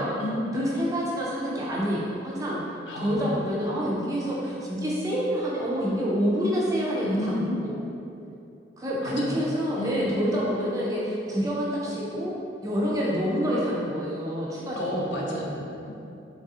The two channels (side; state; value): both; normal; correlation 0.63